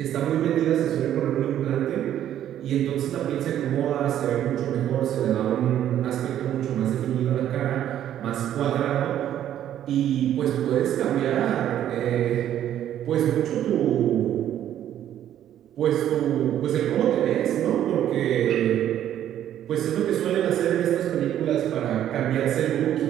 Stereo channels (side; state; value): left; quieter; 11.1 dB